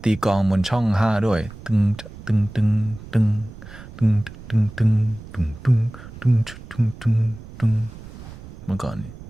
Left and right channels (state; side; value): noise; right; rumble, 16 dB below the sound